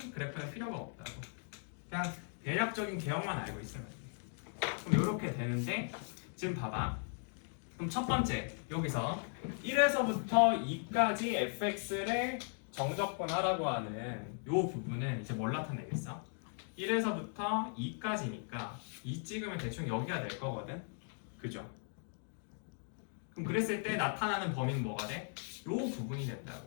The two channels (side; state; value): right; silent; 52 dB below the other